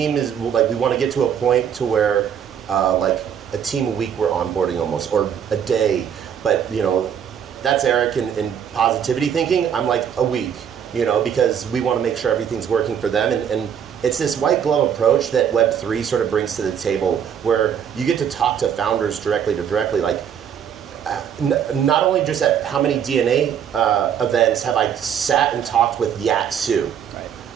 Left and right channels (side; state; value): left; quieter; 8.5 dB